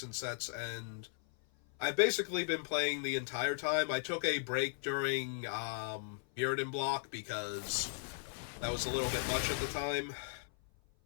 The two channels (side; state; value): right; silent; 53 dB below the other